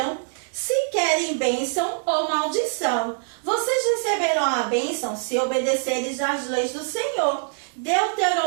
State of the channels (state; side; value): silent; left; digital silence